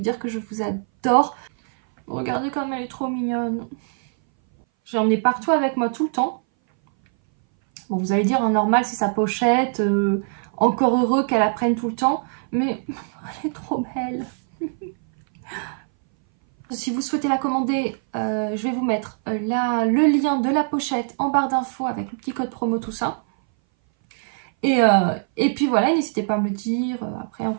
dire que je vous adore. Regardez comme elle est trop mignonne. J'ai emmené partout avec moi tout le temps. Bon, vous allez dire, normal, c'est sa pochette. Encore heureux qu'elle la prenne tout le temps. Mais elle est trop belle. Si vous souhaitez la commander, je vais vous mettre le lien de la pochette en barre d'infos avec le petit code promo, tout ça. Et puis voilà, n'hésitez pas à me le dire après en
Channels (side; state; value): left; silent; 60 dB below the other